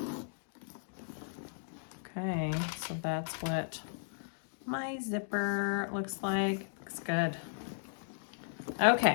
Okay, so that's what my zipper looks like. Looks good.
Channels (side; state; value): right; silent; digital silence